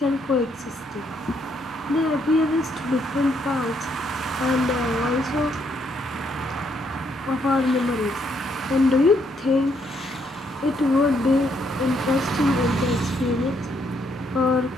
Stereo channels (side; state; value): both; normal; correlation 0.73